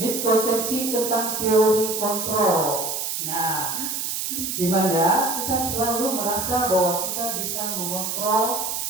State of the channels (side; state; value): right; noise; hiss, 2 dB below the sound